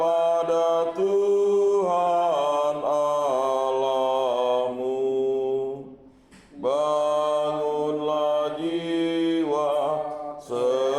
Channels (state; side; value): identical; both; correlation 1.00